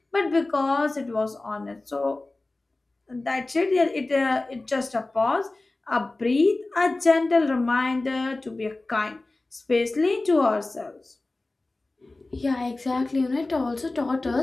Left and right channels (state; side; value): quieter; right; 3.0 dB